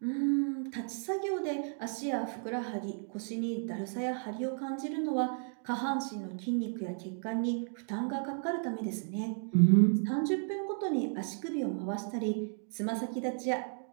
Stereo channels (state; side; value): silent; left; 55 dB below the other